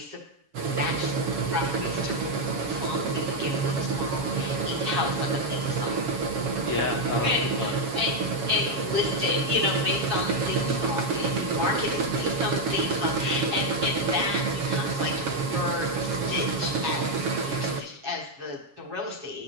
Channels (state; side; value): late; left; 7.3 ms